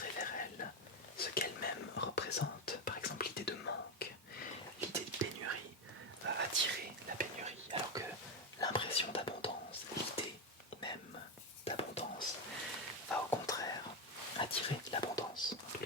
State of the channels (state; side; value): normal; both; correlation 0.11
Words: vers elle ce qu'elle-même représente. Par exemple, l'idée de manque, l'idée de pénurie va attirer la pénurie, alors que l'impression d'abondance, l'idée même d'abondance, va au contraire attirer l'abondance. En tous